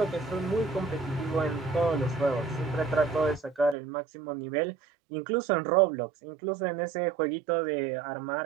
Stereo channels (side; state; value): left; drops out; at 3.8 s